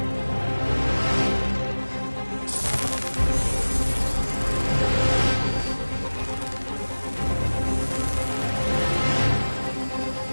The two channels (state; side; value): inverted; both; correlation -1.00